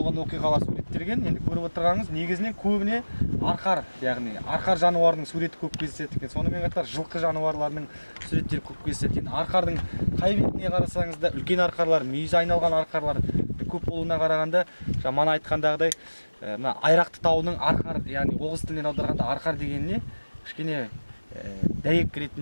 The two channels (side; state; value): both; inverted; correlation -1.00